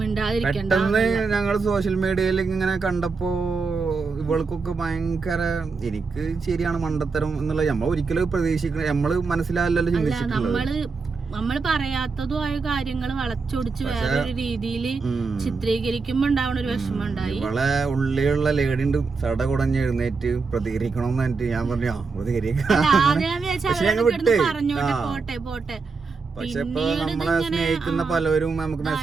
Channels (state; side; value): quieter; left; 4.6 dB